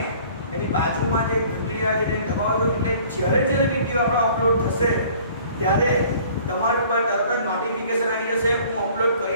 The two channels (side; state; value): both; inverted; correlation -0.52